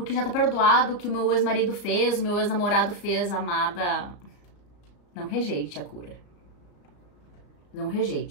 já tá perdoado o que o meu ex-marido fez, o meu ex-namorado fez, amada. Não rejeite a cura. Não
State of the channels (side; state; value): right; late; 34 ms